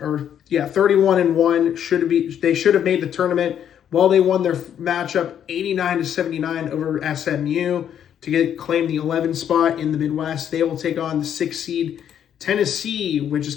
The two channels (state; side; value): quieter; right; 9.4 dB